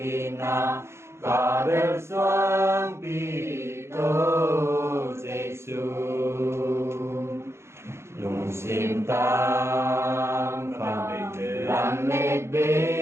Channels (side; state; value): left; late; 0.13 ms